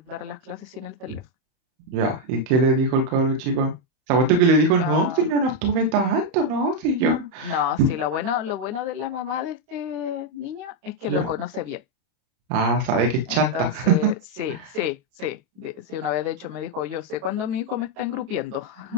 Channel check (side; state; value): left; late; 31 ms